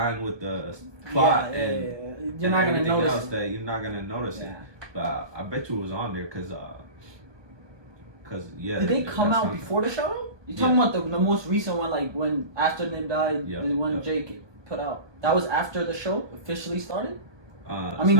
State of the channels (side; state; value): left; late; 1.2 ms